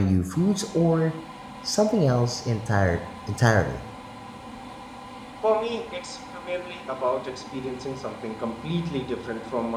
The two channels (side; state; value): both; identical; correlation 1.00